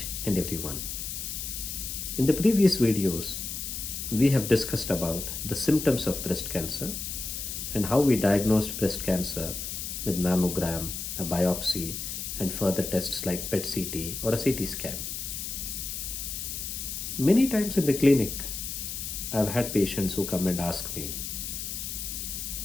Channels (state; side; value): noise; left; hiss, 5 dB below the sound